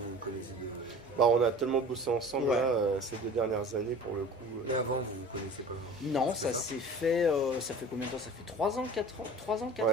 on a tellement bossé ensemble ces 2 dernières années pour le coup. Et avant vous connaissez pas? Non, ça s'est fait, ça fait combien de temps? Ça fait 3 ans, 4 ans? 3 ans, 4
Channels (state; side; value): normal; both; correlation 0.41